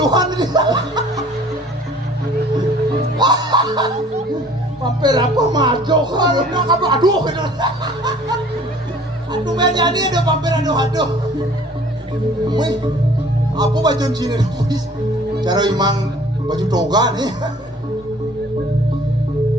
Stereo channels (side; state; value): both; normal; correlation 0.52